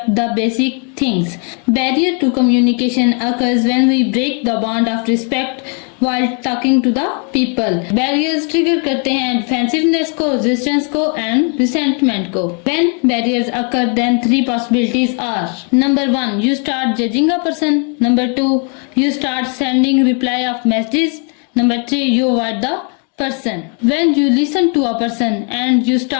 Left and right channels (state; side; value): quieter; right; 39.7 dB